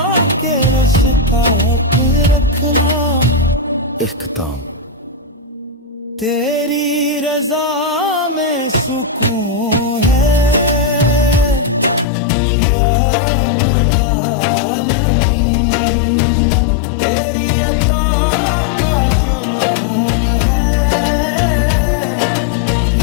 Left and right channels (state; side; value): drops out; right; at 12.1 s